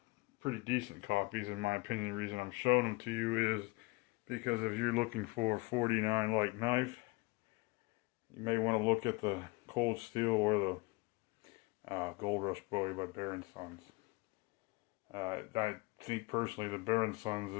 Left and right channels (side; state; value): right; quieter; 25.1 dB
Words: Pretty decent copies in my opinion. The reason I'm showing them to you is because if you're looking for a 49 like knife, you may want to look at the Cold Steel or the Gold Rush Bowie by Baron Sons. I think personally the Baron Sons